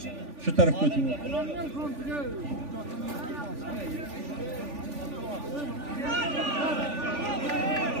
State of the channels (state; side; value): late; left; 3.4 ms